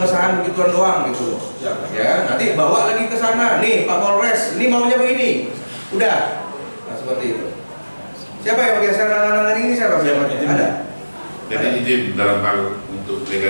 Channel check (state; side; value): inverted; both; correlation -1.00